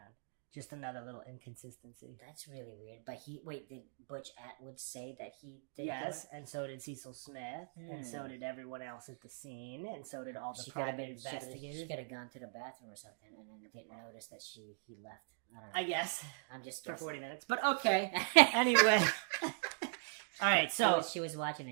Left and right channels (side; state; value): left; silent; digital silence